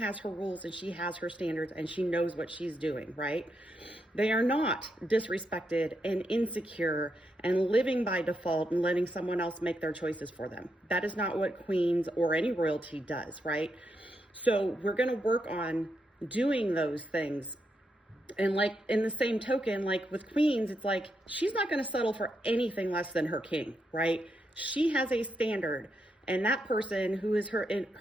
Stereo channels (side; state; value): both; normal; correlation 0.82